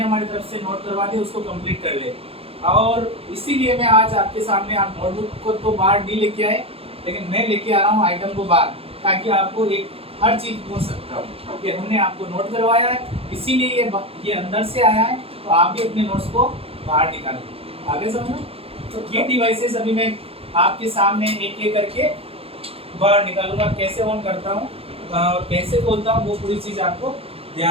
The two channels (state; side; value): late; left; 0.28 ms